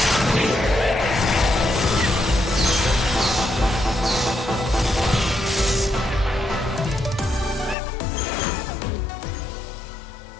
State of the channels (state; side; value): drops out; right; at 7.8 s